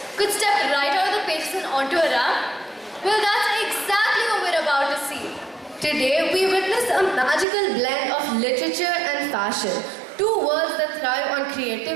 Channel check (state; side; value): drops out; left; at 7.5 s